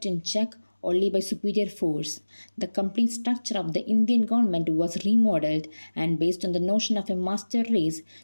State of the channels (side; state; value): both; inverted; correlation -1.00